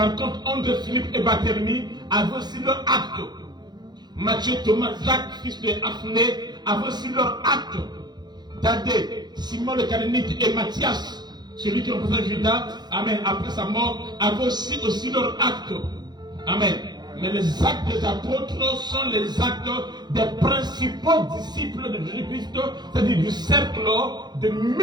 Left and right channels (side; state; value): left; late; 0.21 ms